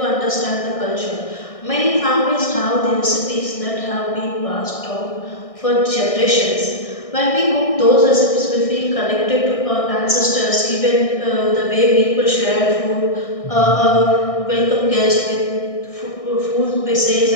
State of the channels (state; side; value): late; right; 1.6 ms